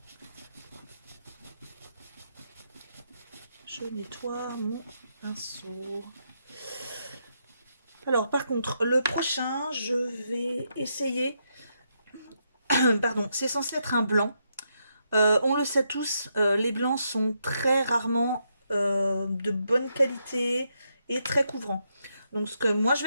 Je nettoie mon pinceau. Alors, par contre, le prochain, je vais essayer... Pardon, c'est censé être un blanc. On le sait tous, les blancs sont très rarement de bonne qualité et très couvrants. Donc ce que moi je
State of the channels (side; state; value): both; inverted; correlation -0.80